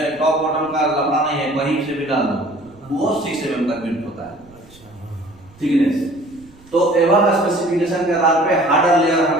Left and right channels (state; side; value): noise; right; rumble, 26 dB below the sound